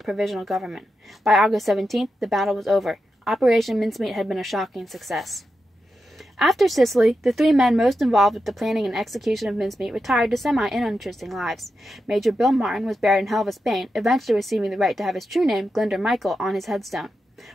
a provisional government. By August 17th, the battle was over. Operation Mincemeat had been a shocking success. After Sicily, the 3 men most involved with the planning and execution of Mincemeat retired to semi-uninteresting lives. Major Bill Martin was buried in Helva, Spain, eventually receiving the right to have his true name, Glinder Michael, on his headstone.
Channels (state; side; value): normal; both; correlation 0.88